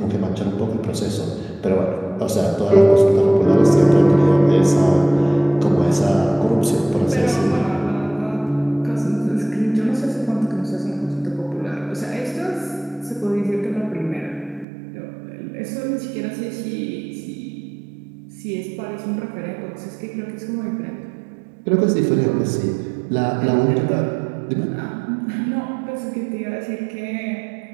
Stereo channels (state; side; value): drops out; left; at 14.7 s